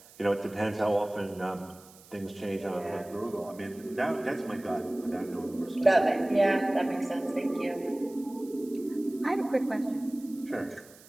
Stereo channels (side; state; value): right; noise; hiss, 23 dB below the sound